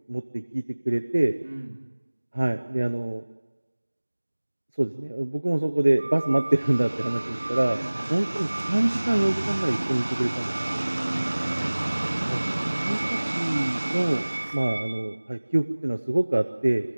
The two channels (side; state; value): both; inverted; correlation -1.00